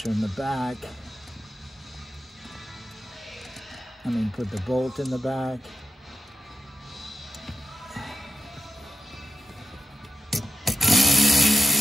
in the back. Put the bolt in the back.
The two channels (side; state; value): both; normal; correlation 0.89